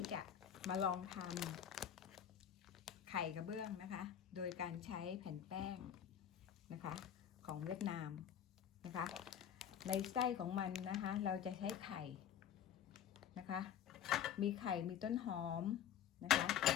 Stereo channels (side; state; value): right; quieter; 9.5 dB